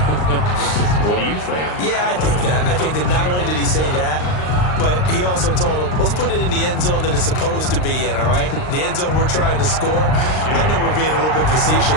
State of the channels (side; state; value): right; late; 39 ms